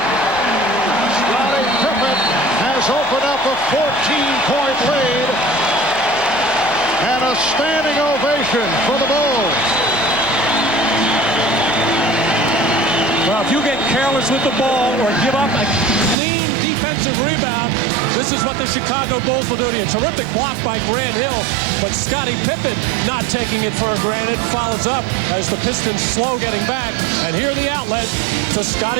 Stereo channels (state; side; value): drops out; left; at 16.2 s